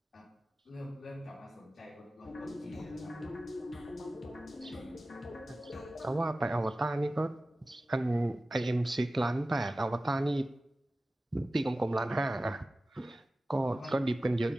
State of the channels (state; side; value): normal; both; correlation 0.96